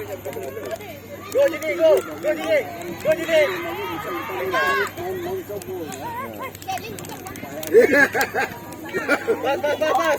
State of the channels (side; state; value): both; identical; correlation 1.00